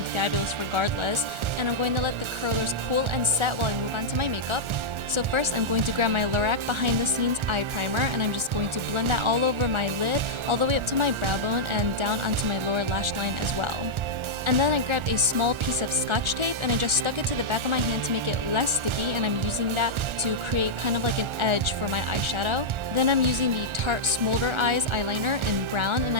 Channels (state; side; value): late; left; 1.4 ms